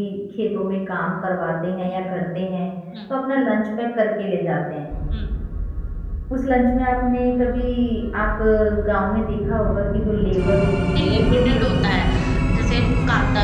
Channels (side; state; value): both; identical; correlation 1.00